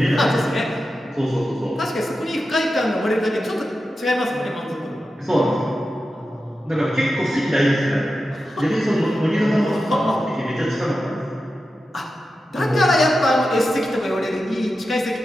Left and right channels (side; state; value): both; normal; correlation 0.91